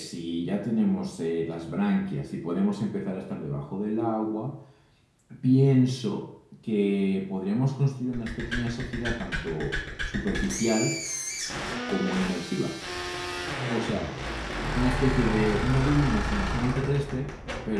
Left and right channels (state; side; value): identical; both; correlation 1.00